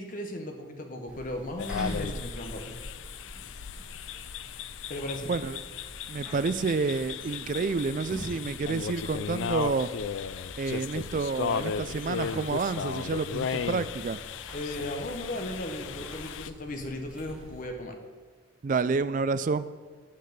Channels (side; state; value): both; normal; correlation 0.22